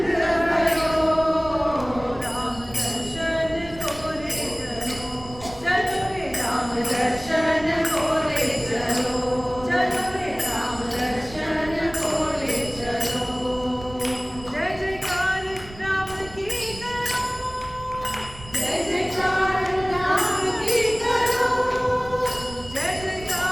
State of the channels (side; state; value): right; noise; rumble, 17 dB below the sound